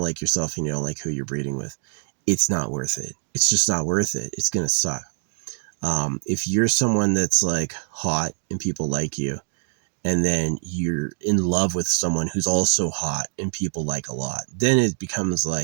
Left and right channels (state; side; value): silent; left; 57 dB below the other